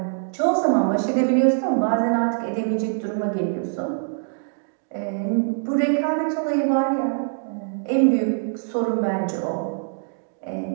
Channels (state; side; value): silent; left; digital silence